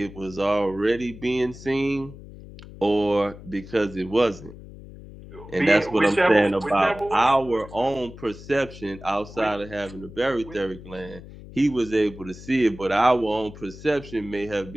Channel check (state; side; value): noise; left; hum, 16 dB below the sound